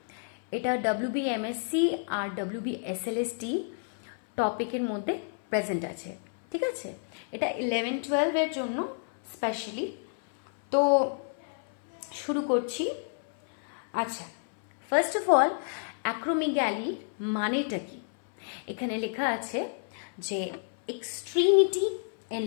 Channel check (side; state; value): right; silent; 58 dB below the other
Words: এটা WBMSC আর WBSLST টপিকের মধ্যে প্রেজেন্ট আছে। ঠিক আছে, এটা 11-12 জন্য স্পেশালি। তো শুরু করছি। আচ্ছা, ফার্স্ট অফ অল, অ্যাক্রোমেগালি মানেটা কি? এখানে লেখা আছে যে এক্সট্রিমিটি